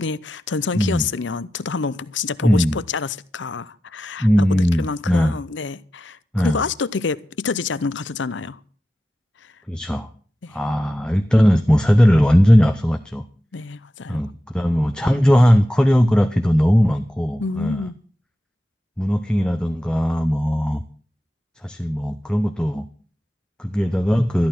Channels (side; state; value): both; normal; correlation 0.92